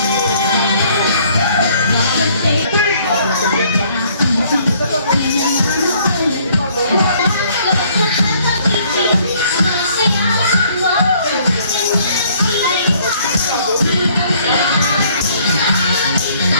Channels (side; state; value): both; inverted; correlation -0.61